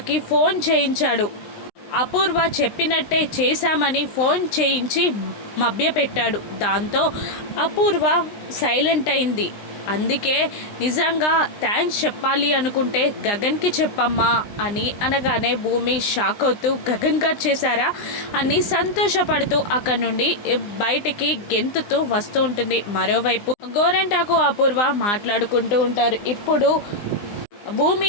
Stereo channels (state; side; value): late; right; 20 ms